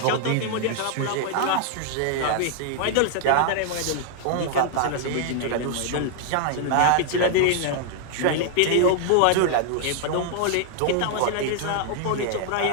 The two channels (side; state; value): both; different; correlation -0.01